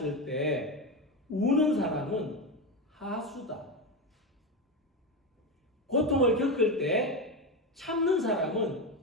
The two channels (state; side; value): normal; both; correlation 0.15